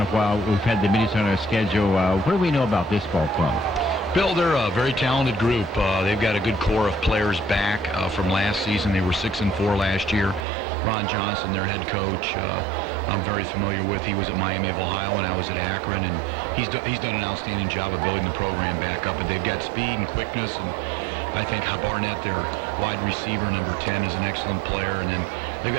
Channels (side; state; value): left; drops out; at 10.5 s